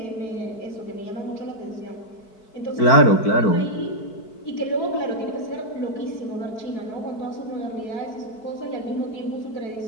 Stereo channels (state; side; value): late; right; 4.6 ms